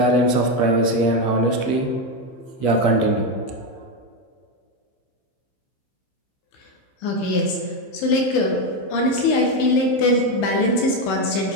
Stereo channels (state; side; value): late; right; 16 ms